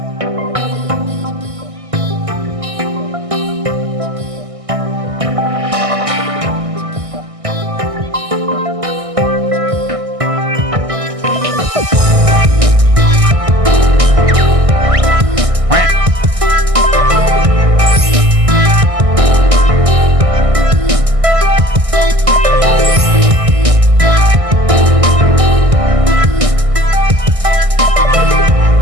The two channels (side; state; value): left; late; 1.6 ms